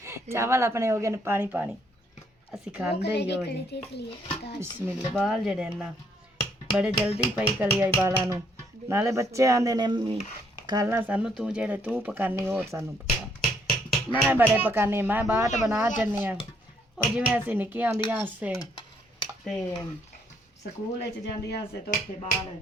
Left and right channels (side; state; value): both; normal; correlation 0.69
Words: चावल अपने हो गए ने पानी पानी ਅਸੀਂ ਖਾਂਦੇ ਹੀ ਹੋ ਜੀ। ਬਿਸਮਿल्ला ਬਾਲ ਜਿਹੜੇ ਨਾ ਬੜੇ ਜਲਦੀ ਪਈ ਕਲੀ ਆਈ ਬਾਲਾਂ ਨੂੰ ਨਾਲੇ ਬੱਚੇ ਆਂਦੇ ਨੇ ਮੰਮੀ ਖਾਣਾ ਸਾਨੂੰ ਤੂੰ ਜਿਹੜੇ ਤੂੰ ਪਕਾਨੀ ਹੋਰ ਸਾਨੂੰ ਪਕਾ ਮੈਂ ਬੜੇ ਪਕਾਨੀ ਮੈਂ ਬਾਟ ਬਣਾ ਜੰਨੀ ਆ ਉਹ ਜਿਵੇਂ ਅਸੀਂ ਨਿੱਕੀਆਂ ਹੁੰਦੀਆਂ ਸੇ ਤੇ ਸਕੂਲ ਵਿੱਚ ਜਾਂਦੀਆਂ ਸੇ ਤਾਂ ਉੱਥੇ ਬਾਲ